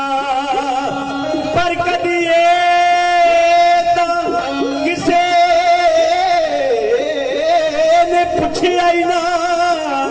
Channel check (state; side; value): identical; both; correlation 1.00